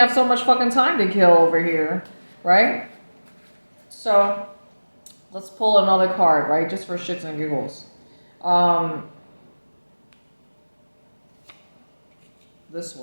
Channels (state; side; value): inverted; both; correlation -1.00